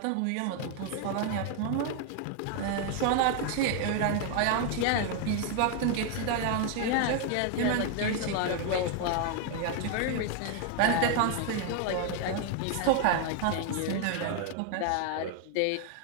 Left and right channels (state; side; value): different; both; correlation 0.00